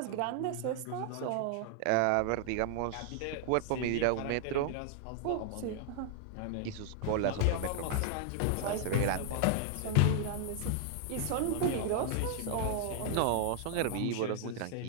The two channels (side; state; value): both; different; correlation 0.00